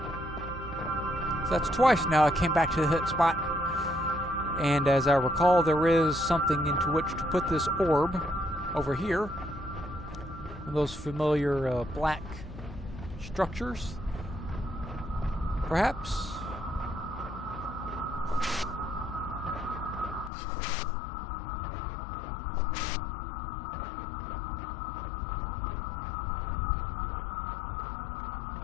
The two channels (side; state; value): right; drops out; at 20.3 s